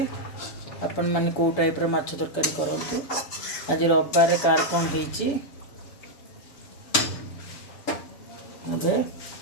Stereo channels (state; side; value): late; right; 6.9 ms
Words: आपण मान को टाइप रो माछ तरकारी करंतु आज रविवार कार कोन हेची अबे